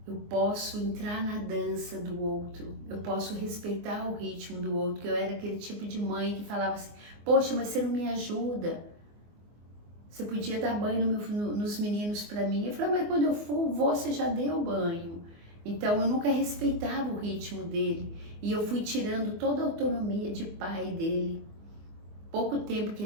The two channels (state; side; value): late; left; 24 ms